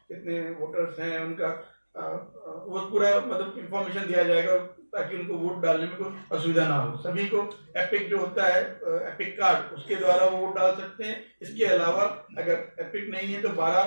कितने वोटर्स हैं, उनका वो पूरा मतलब इंफॉर्मेशन दिया जाएगा ताकि उनको वोट डालने में कोई असुविधा ना हो। सभी को एपिक जो होता है, एपिक कार्ड, उसके द्वारा वो वोट डाल सकते हैं। इसके अलावा अगर एपिक नहीं है तो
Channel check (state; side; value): inverted; both; correlation -1.00